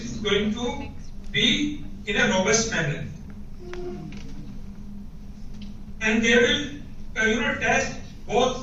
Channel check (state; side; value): identical; both; correlation 1.00